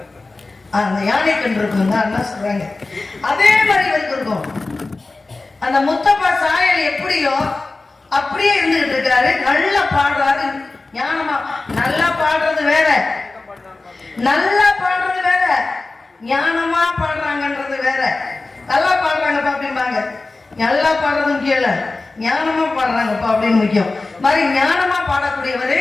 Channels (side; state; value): right; quieter; 3.4 dB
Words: அந்த யானை கண் இருக்கும் தான் என்ன சொல்றாங்க, அதே மாதிரி இவருக்கு இருக்கும். அந்த முத்தப்பா சாயல் எப்படியோ அப்படியே இருந்துகிட்டு இருக்காரு. நல்லா பாடுறாரு, ஞானமா. நல்லா பாடுறது வேற, நல்லா பாடுறது வேற, ஞானமா பாடுறாங்கன்றது வேற. நல்லா பாடுறாங்கப்பா அப்படிம்பாங்க, நல்லா பாடுறது முக்கியம் இல்ல, ஞானமா பாடுறாங்கப்பா அப்படின்னு முக்கியம். மாதிரி ஞானமா பாடக்கூடியவரு,